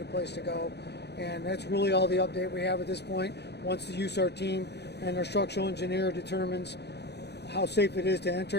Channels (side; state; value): right; late; 0.49 ms